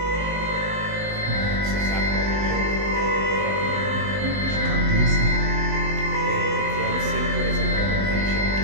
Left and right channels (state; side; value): late; left; 19 ms